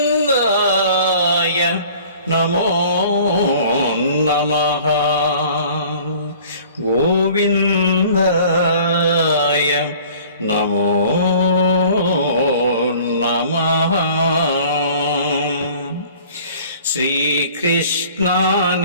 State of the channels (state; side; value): inverted; both; correlation -0.49